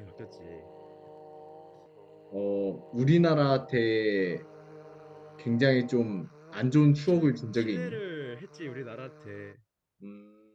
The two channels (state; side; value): identical; both; correlation 1.00